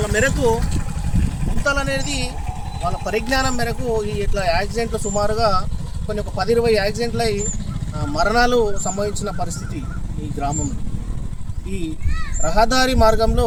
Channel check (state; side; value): identical; both; correlation 1.00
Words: మేరకు గుంతలు అనేది వాళ్ళ పరిజ్ఞానం మేరకు ఈ ఇట్లా యాక్సిడెంట్లు సుమారుగా ఒక 10-20 యాక్సిడెంట్లు అయి మరణాలు సంభవించిన పరిస్థితి ఈ గ్రామంలో. ఈ రహదారి మార్గంలో